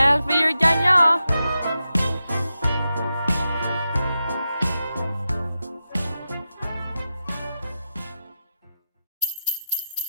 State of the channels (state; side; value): inverted; both; correlation -0.90